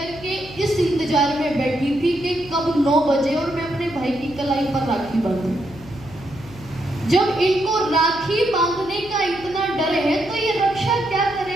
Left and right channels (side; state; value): left; noise; hum, 18 dB below the sound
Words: के इस इंतजार में बैठी थी कि कब 9 बजे और मैं अपने भाई की कलाई पर राखी बांधूं। जब इनको राखी बांधने का इतना डर है तो ये रक्षा क्या